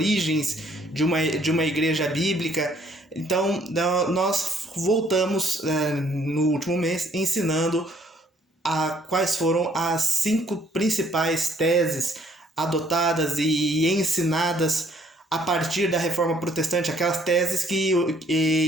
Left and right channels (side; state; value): both; normal; correlation 0.63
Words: de uma igreja bíblica. Então nós voltamos no último mês ensinando quais foram as 5 principais teses adotadas e ensinadas a partir da Reforma Protestante, aquelas teses